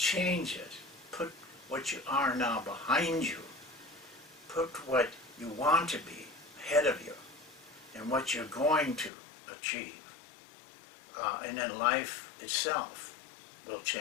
it. Put what you are now behind you. Put what you want to be ahead of you and what you're going to achieve. And then life itself will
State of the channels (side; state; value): right; drops out; at 9.1 s